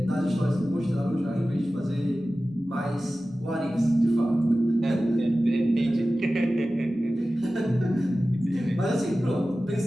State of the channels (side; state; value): both; normal; correlation 0.95